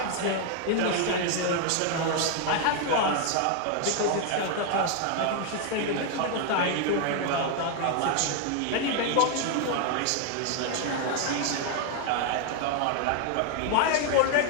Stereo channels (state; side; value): different; both; correlation 0.00